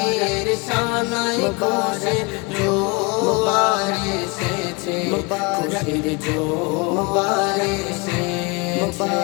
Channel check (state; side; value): quieter; right; 28.4 dB